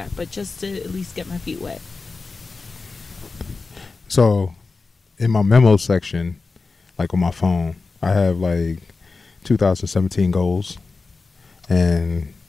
But just to at least get my feet wet. So in my memo section, on my phone, I have 2017 goals. And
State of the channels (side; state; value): right; quieter; 4.1 dB